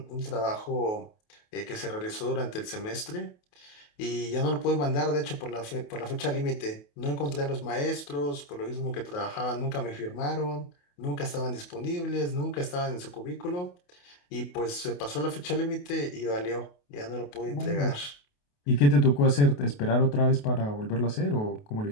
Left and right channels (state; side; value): late; right; 28 ms